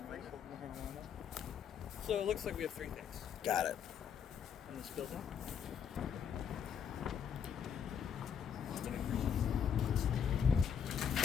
medical marijuana. So it looks like we have 3 things Got it. in this building.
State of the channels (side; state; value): right; quieter; 7.7 dB